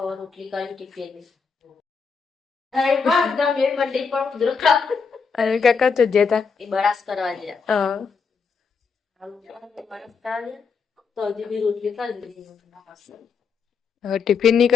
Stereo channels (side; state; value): right; quieter; 5.5 dB